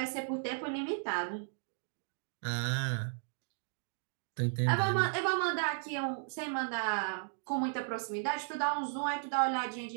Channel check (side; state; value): left; silent; digital silence